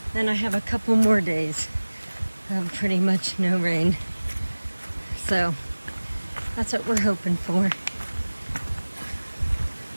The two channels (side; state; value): both; inverted; correlation -1.00